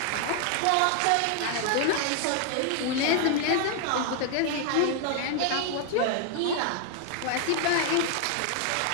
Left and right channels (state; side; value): different; both; correlation 0.00